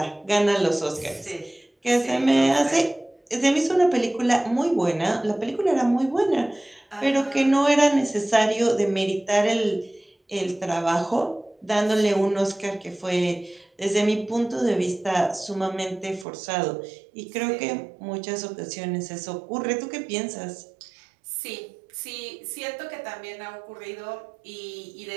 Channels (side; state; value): left; drops out; at 16.2 s